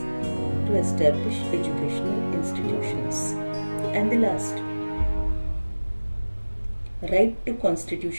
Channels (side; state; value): both; inverted; correlation -1.00